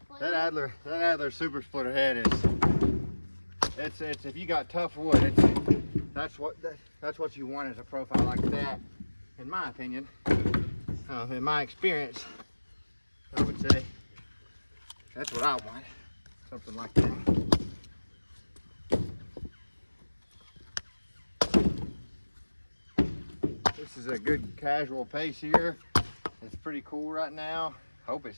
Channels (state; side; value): inverted; both; correlation -1.00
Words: That Adler super splitter head is, it's if you got tough wood, that's what you want as a profile like that, in my opinion. In my experience, I would say that's what I want, something like that. This is a good casual pace here. It's pretty cool right now. Hope it